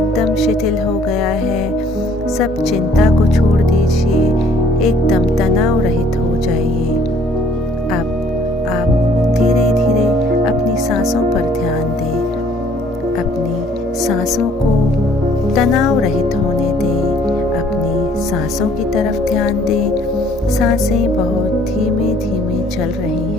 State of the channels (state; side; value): normal; both; correlation 0.60